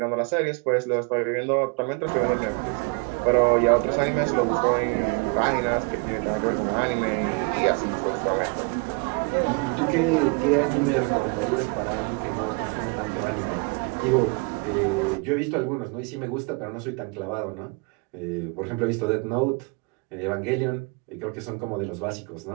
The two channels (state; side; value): quieter; left; 32.6 dB